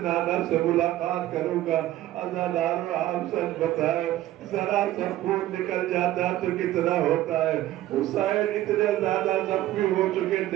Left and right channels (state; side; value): quieter; left; 14.4 dB